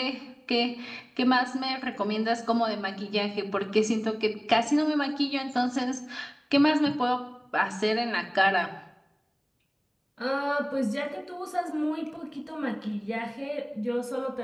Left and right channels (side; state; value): both; identical; correlation 1.00